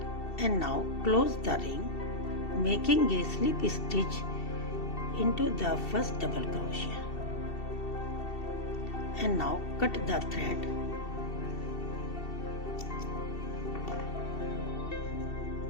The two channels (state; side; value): late; right; 2.7 ms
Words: And now close the ring, making a slip stitch into the first double crochet. And now cut the thread.